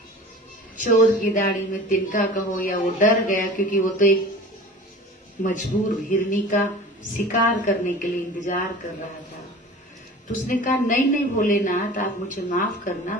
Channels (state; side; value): normal; both; correlation 0.39